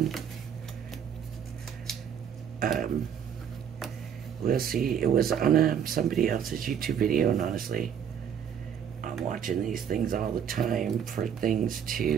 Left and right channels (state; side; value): quieter; left; 8.3 dB